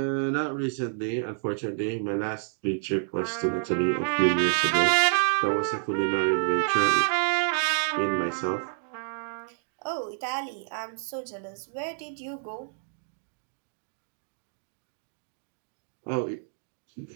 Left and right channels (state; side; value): silent; left; digital silence